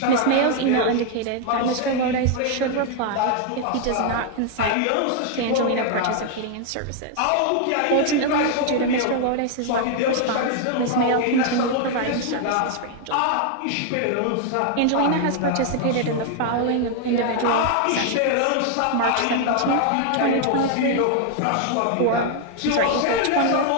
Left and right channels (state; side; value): different; both; correlation 0.00